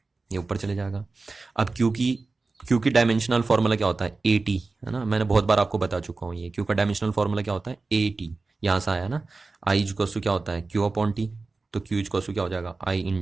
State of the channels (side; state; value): left; quieter; 3.8 dB